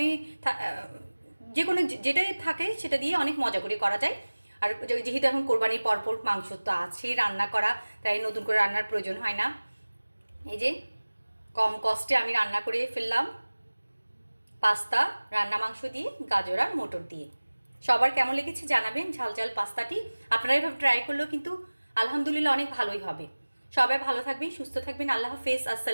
যে কোনো যেটাই থাকে সেটা দিয়ে অনেক মজা করে করা যায়। আর যেহেতু এখন কোরবানির পরপর মাংস তো আছে রান্না করা, তাই নতুন করে রান্নার প্রয়োজন হয় না। এই যে কম কষ্টে আমি রান্না করে ফেললাম পাস্তা রান্না মাংস দিয়ে, গাজর আর মটর দিয়ে। সবার কেমন লেগেছে জানাবেন ঝাল ঝাল পাস্তাটি। আপনারা এভাবে ট্রাই করলেও কিন্তু আলহামদুলিল্লাহ অনেক ভালোই হবে। সবাই ভালো থাকবেন, সুস্থ থাকবেন। আল্লাহ হাফেজ,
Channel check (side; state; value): both; inverted; correlation -1.00